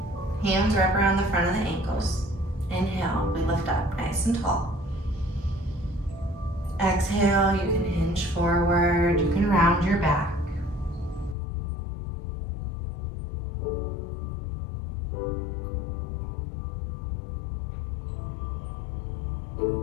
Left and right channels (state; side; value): drops out; right; at 11.4 s